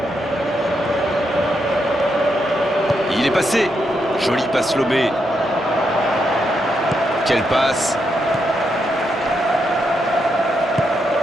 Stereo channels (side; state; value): both; normal; correlation 0.81